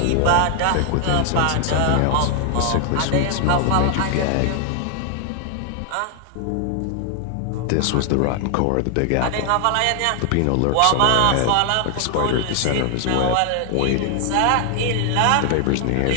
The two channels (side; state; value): both; different; correlation 0.00